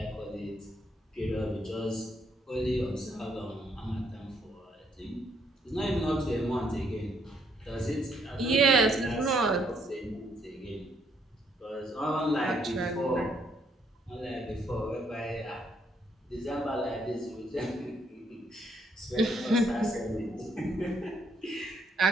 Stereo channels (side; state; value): both; normal; correlation 0.71